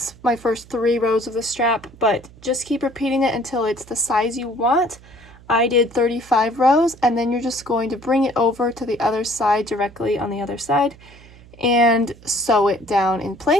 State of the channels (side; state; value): right; noise; hum, 23 dB below the sound